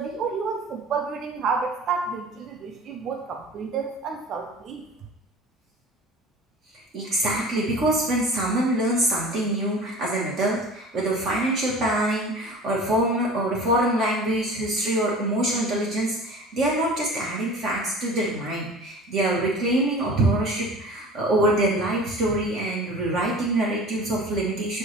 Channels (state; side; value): normal; both; correlation 0.40